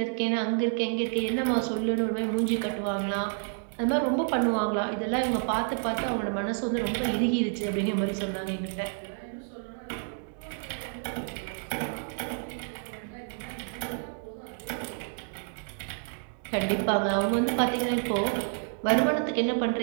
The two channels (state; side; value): silent; left; 58 dB below the other